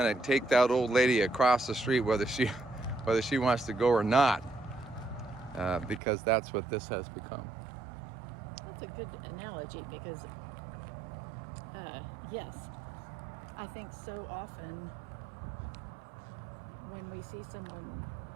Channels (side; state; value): left; drops out; at 6.0 s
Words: of take that old lady across the street whether she wants to go or not, because that's what this has become. That's a good analogy because, yes, I think so often when we see someone